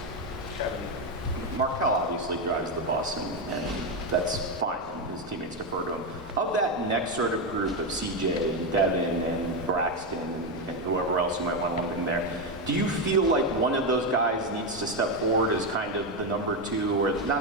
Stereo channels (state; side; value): normal; both; correlation 0.09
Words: Markel obviously drives the bus, and that's fine. His teammates defer to him. Of that next sort of group of CJ and Devin and Braxton and whoever else you might want to lump in there, do you feel like one of those guys needs to step forward as kind of the number 2, or